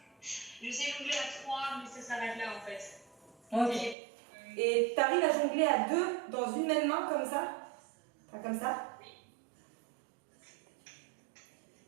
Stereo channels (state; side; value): drops out; left; at 4.0 s